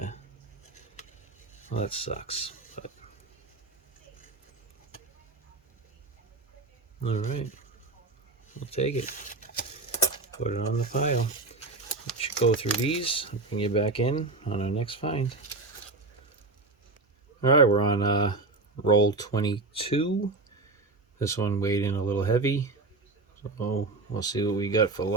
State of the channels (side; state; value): left; quieter; 3.4 dB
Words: well, that sucks, but all right, we'll take it, put it on the pile. We should go through these and bring you back in on our next find. All right, we're on roll 22. This one weighed in a little heavy, so we'll see what we got for